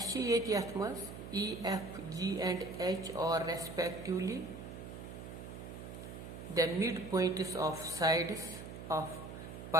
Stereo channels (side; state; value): right; noise; hum, 10 dB below the sound